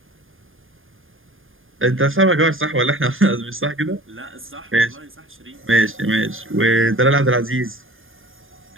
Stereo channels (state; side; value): late; left; 0.59 ms